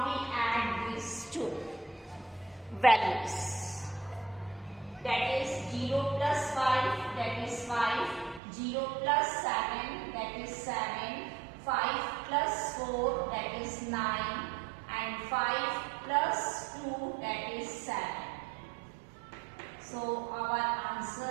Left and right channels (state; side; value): drops out; left; at 8.4 s